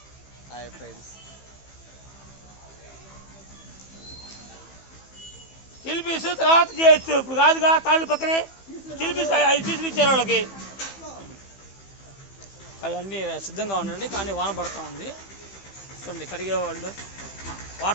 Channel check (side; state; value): right; late; 15 ms